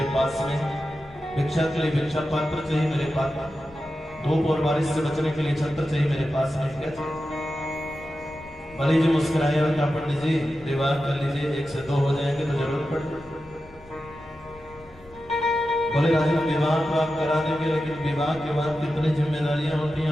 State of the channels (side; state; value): left; noise; rumble, 24 dB below the sound